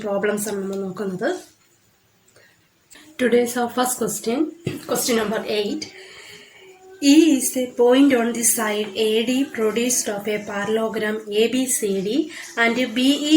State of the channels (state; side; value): identical; both; correlation 1.00